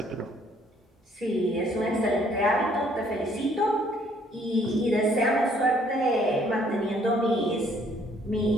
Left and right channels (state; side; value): normal; both; correlation 0.64